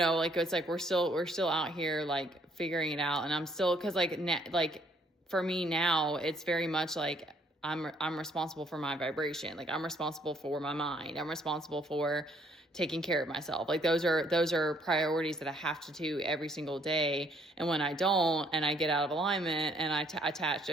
it's like we're still out here like figuring it out, and I'm still, because like for me now, it's very much like I'm responsible for my vibration. Like, I'm responsible for my mind. I'm responsible for taking care of myself. Like, those are priorities that I have to do every single day. And when I don't, and I get out of alignment, and I attach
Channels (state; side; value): normal; both; correlation 0.66